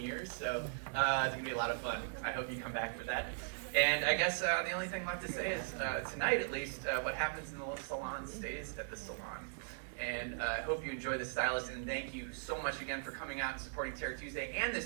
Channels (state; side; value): silent; left; digital silence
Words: years, so it's gonna be a lot of fun. I hope you come back for that. And I guess the only thing left to say is, tonight at least, what happens in the salon stays at the salon. And I hope you enjoy The Stylist, and thank you so much again for coming out and supporting Terror Tuesday and